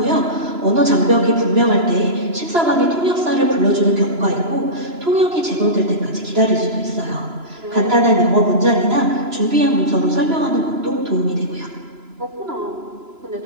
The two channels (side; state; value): left; late; 2.9 ms